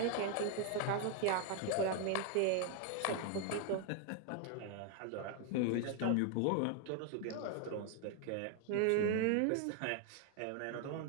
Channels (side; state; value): both; different; correlation 0.00